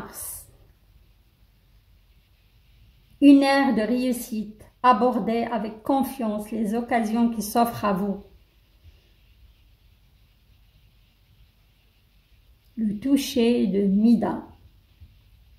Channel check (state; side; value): identical; both; correlation 1.00